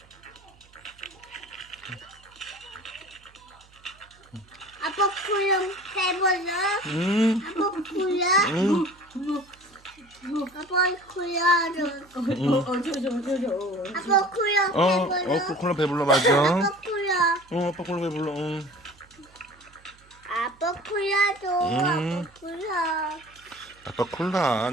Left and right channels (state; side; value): noise; right; hum, 28 dB below the sound